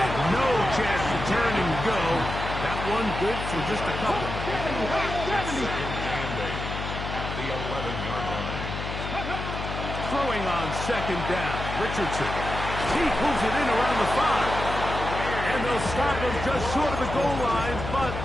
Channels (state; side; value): noise; left; hum, 6 dB below the sound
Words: no chance to turn and go. That one good for just a couple. Second and 8 at the 11-yard line. Throwing on second down. Richardson. He pulls it in around the 5. And they'll stop him just short of the goal line, but